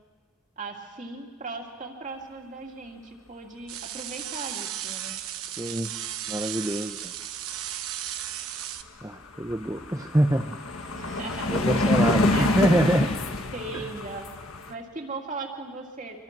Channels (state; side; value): normal; both; correlation 0.67